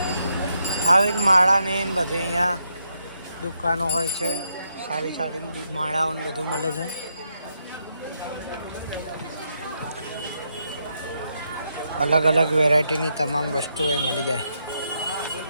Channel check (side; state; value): both; inverted; correlation -0.80